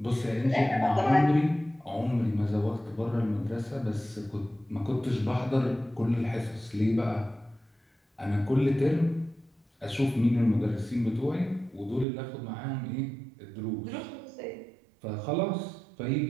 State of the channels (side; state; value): left; drops out; at 12.1 s